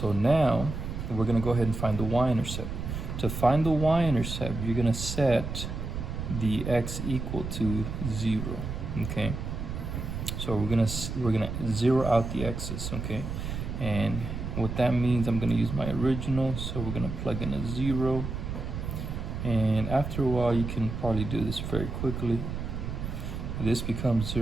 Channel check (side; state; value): right; noise; rumble, 5 dB below the sound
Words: now we're going to go ahead and find the y-intercept. To find the y-intercept, you're going to set the x equal to 0. Okay, so we're gonna zero out the x's. Okay, and what that means, I'm going to use my original, so we're going to plug in a 0, and after a while you can probably do this very quickly. This becomes